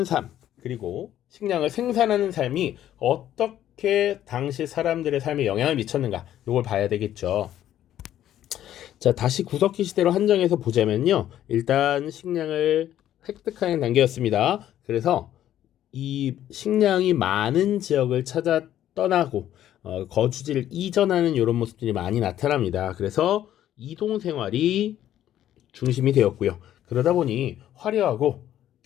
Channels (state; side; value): quieter; right; 11.8 dB